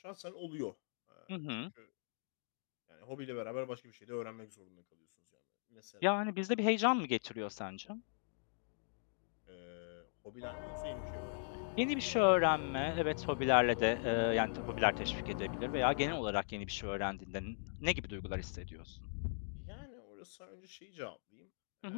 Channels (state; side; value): silent; right; digital silence